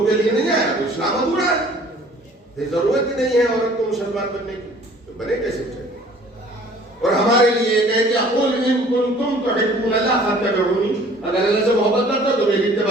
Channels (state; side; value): normal; both; correlation 0.53